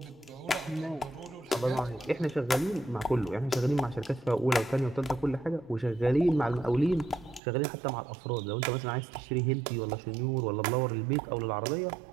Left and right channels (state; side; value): drops out; left; at 7.4 s